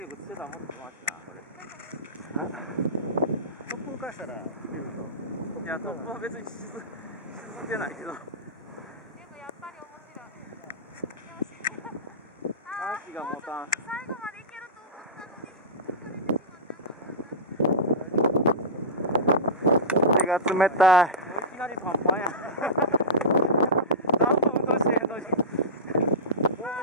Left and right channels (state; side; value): normal; both; correlation -0.13